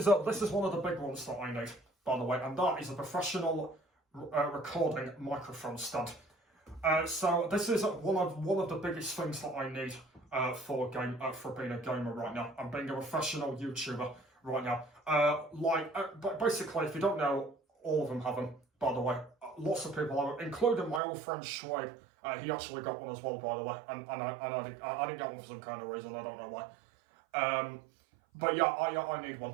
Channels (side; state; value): left; drops out; at 21.0 s